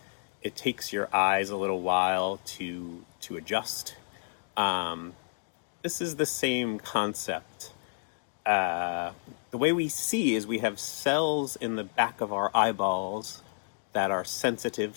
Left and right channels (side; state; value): right; silent; digital silence